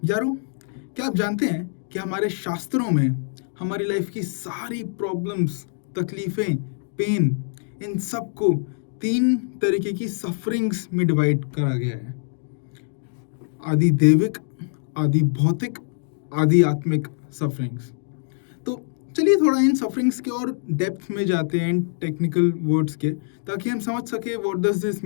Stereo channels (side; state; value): right; silent; digital silence